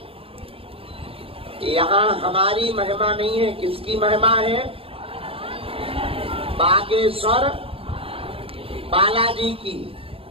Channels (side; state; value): left; late; 0.27 ms